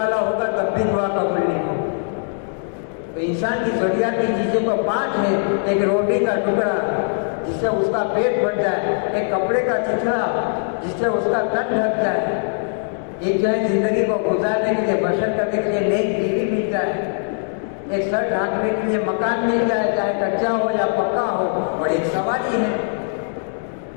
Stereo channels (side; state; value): right; silent; 60 dB below the other